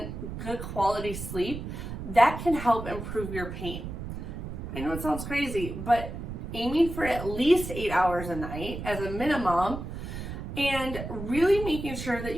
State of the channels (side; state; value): right; noise; rumble, 7 dB below the sound